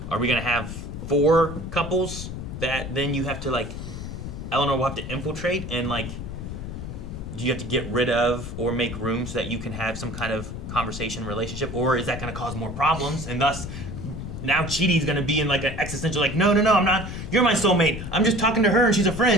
are we gonna have 4 couples that then you have to like, Eleanor will have to infiltrate and like, do you have to get rid of or make room so that you can have some kind of conversation relationship, or is that going to cause more problems and thus now Chidi's going to be in like an existential like no I'm not, you're my soulmate, I'm just talking to her and she's a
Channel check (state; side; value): noise; left; rumble, 8 dB below the sound